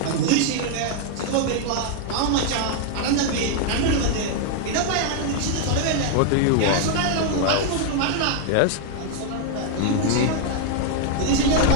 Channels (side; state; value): both; different; correlation 0.00